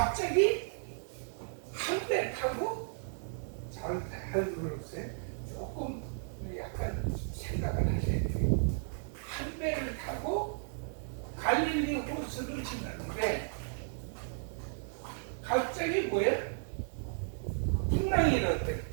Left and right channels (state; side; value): silent; left; digital silence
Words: 한 배 타고 잘 들어보세요. 조금 약간 생각을 하셔야 돼요. 한 배를 타고 갈릴리 호수를 지났는데 갑자기 뭐예요? 풍랑이 일었대.